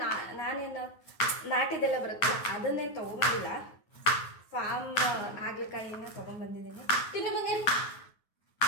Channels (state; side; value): late; right; 9.5 ms